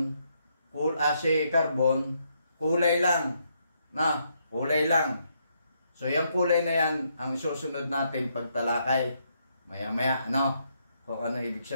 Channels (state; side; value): inverted; both; correlation -0.76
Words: si Carbon, kulay lang. Kulay lang. So yung kulay na yan, ang susunod natin pagtalakay. Maya-maya, kung ano ibig